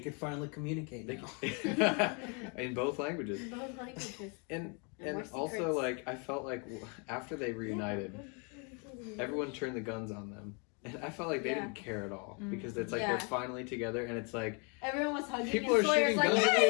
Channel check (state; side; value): quieter; right; 35.1 dB